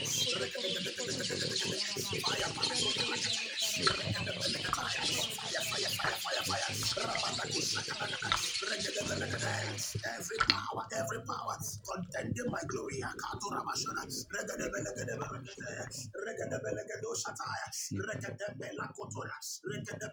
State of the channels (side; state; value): both; identical; correlation 1.00